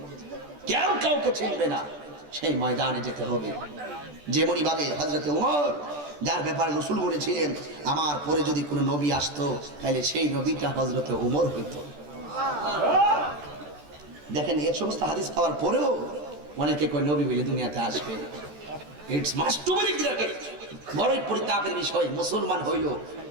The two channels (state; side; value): late; left; 14 ms